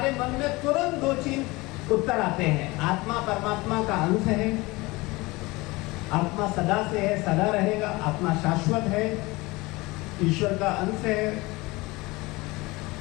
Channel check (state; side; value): quieter; right; 22.5 dB